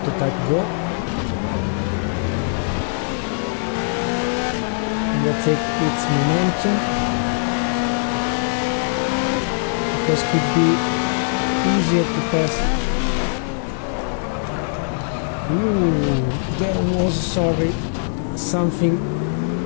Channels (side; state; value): right; silent; digital silence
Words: go. And we'll take its momentum, because it could be easier to pass. Ooh, there was, sorry, something